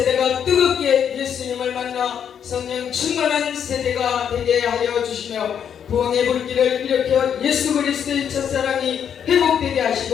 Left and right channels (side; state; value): right; quieter; 8.3 dB